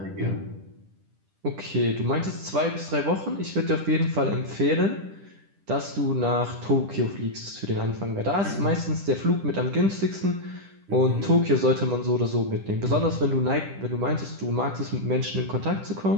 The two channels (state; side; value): late; left; 10 ms